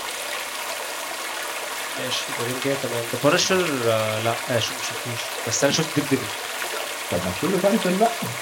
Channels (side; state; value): both; identical; correlation 1.00